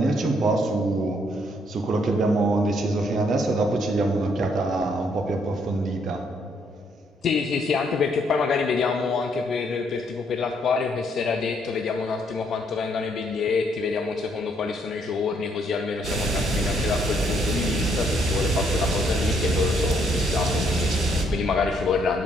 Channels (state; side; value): normal; both; correlation 0.70